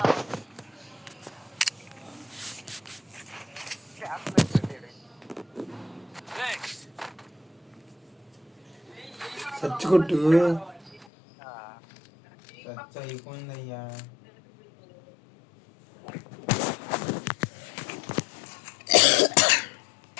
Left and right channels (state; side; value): drops out; right; at 11.1 s